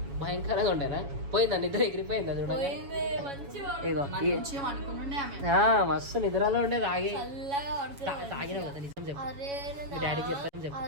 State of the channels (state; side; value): late; left; 7.1 ms